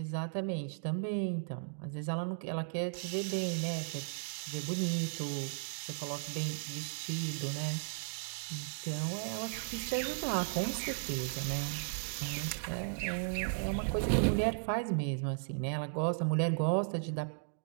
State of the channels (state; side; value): silent; left; digital silence